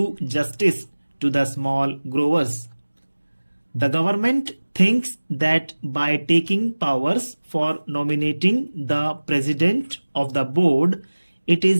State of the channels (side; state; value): both; inverted; correlation -1.00